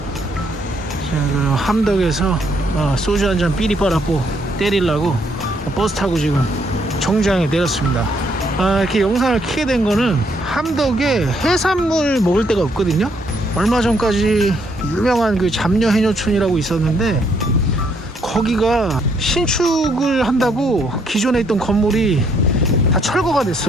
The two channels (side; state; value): both; normal; correlation 0.71